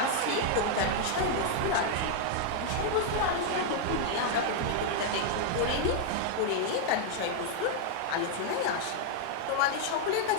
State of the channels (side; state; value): both; different; correlation 0.00